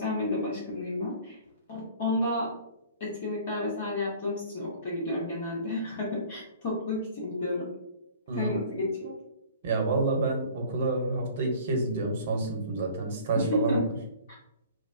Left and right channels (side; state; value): both; inverted; correlation -0.48